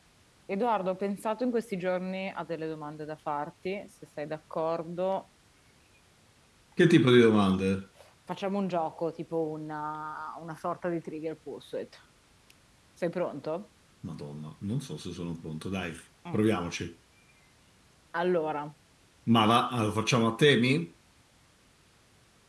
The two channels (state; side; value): identical; both; correlation 1.00